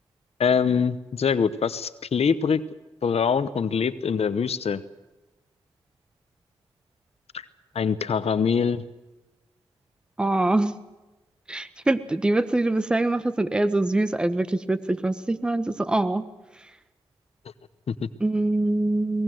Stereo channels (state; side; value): normal; both; correlation 0.78